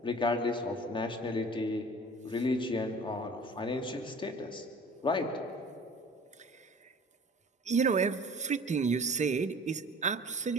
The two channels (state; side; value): normal; both; correlation 0.44